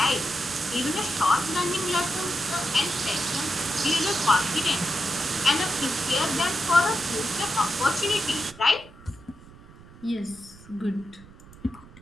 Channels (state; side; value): noise; right; rumble, 21 dB below the sound